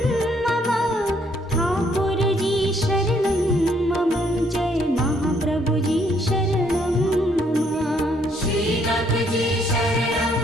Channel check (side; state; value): both; normal; correlation 0.68